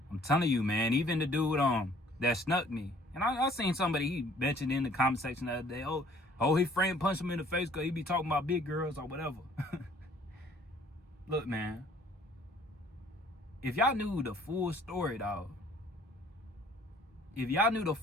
I'm telling you, man, even the dude that snuck me. And I seen somebody, he mentioned in the comment section the other day, oh, his friend punched him in the face because he be talking about big girls or whatever. Look, man. If y'all knew the full story, dog. If y'all knew the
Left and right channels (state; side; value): normal; both; correlation 0.57